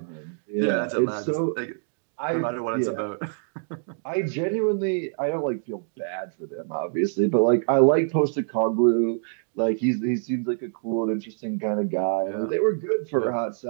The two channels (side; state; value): left; silent; digital silence